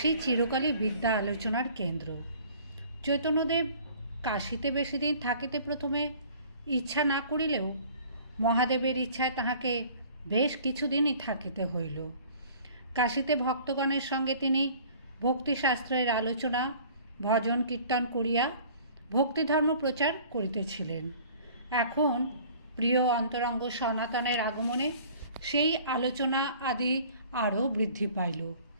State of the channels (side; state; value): both; inverted; correlation -0.50